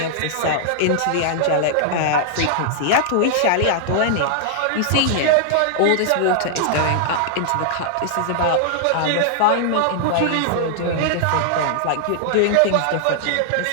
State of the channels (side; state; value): both; different; correlation -0.01